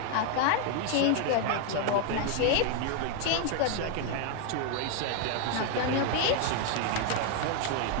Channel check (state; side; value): different; both; correlation 0.01